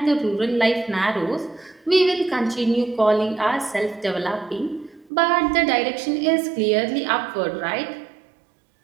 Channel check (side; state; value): left; drops out; at 5.1 s